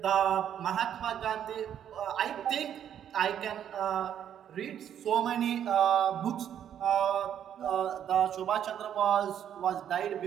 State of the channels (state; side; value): quieter; left; 9.6 dB